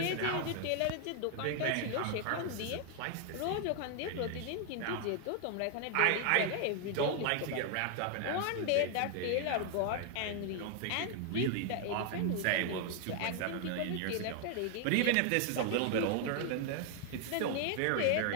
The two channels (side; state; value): both; different; correlation 0.00